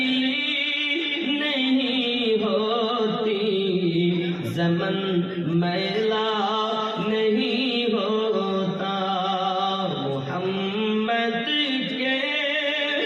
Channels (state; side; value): identical; both; correlation 1.00